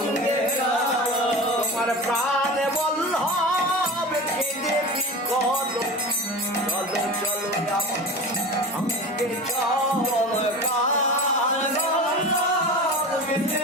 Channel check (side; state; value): both; normal; correlation 0.31